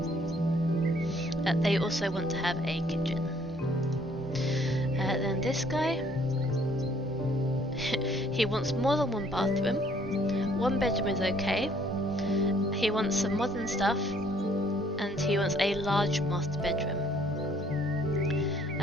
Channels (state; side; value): normal; both; correlation 0.62